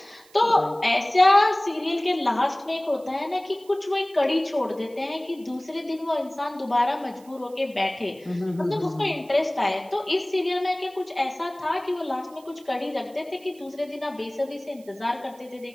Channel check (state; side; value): noise; right; hiss, 27 dB below the sound